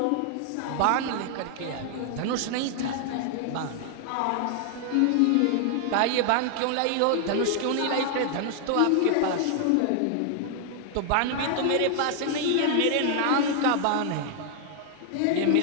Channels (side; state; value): both; different; correlation 0.00